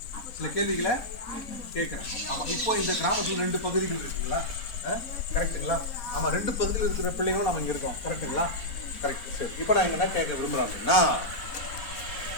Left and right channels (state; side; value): late; right; 4.0 ms